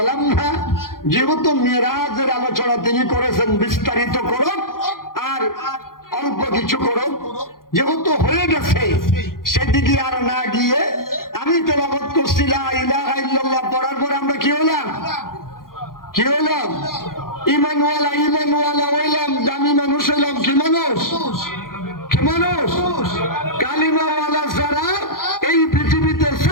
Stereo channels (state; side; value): late; right; 0.91 ms